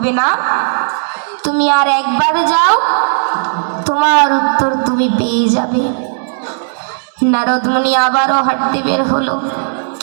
না, তুমি আর একবার যাও, তোমার উত্তর তুমি পেয়ে যাবে। নারদ মুনি আবারও হাঁটতে বের হলো।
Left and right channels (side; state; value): left; silent; digital silence